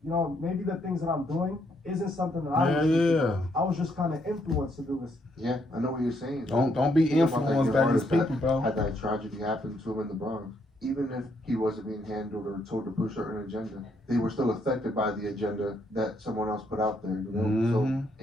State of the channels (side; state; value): both; normal; correlation 0.73